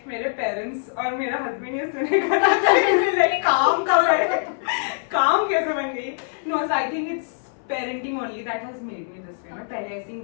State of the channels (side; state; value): right; silent; 63 dB below the other